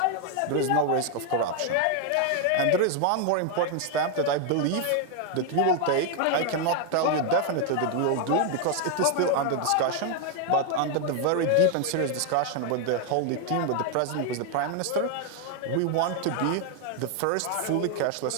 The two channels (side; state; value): both; different; correlation 0.00